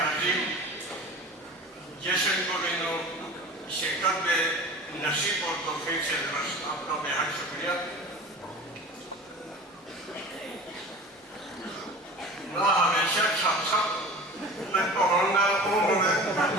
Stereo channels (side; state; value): both; normal; correlation 0.38